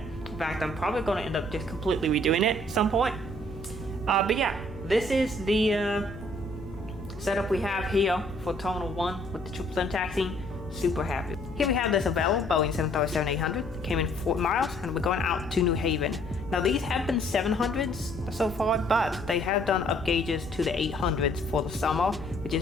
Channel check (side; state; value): left; noise; hum, 14 dB below the sound